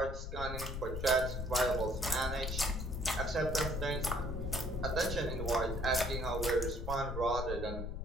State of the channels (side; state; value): left; noise; rumble, 5 dB below the sound